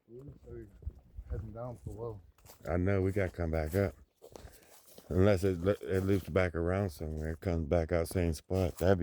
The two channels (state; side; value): identical; both; correlation 1.00